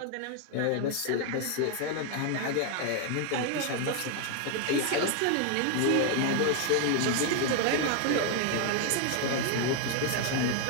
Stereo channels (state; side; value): different; both; correlation 0.01